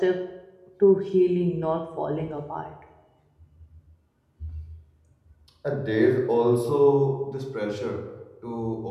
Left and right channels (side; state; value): both; identical; correlation 1.00